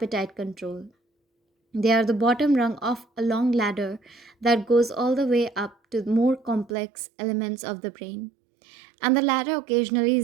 control. They are the bottom rung of a long ladder that goes all the way up to more complex elements of the brain. And the ladder occasionally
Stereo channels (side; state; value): left; drops out; at 6.8 s